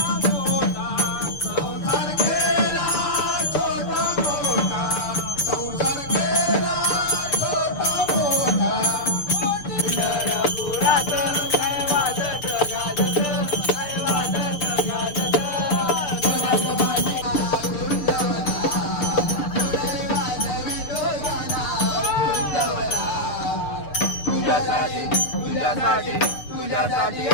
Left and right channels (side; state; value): right; late; 6.8 ms